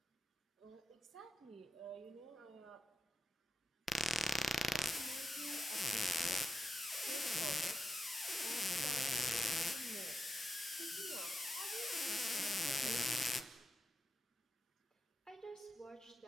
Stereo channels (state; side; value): normal; both; correlation 0.88